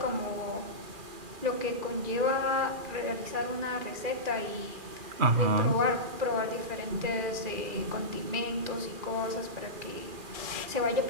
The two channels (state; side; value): late; left; 2.4 ms